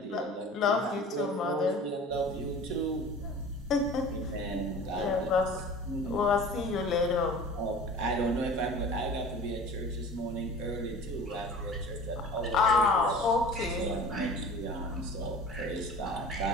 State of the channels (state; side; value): normal; both; correlation 0.41